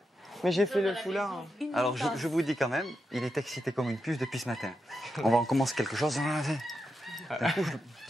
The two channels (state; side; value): normal; both; correlation 0.86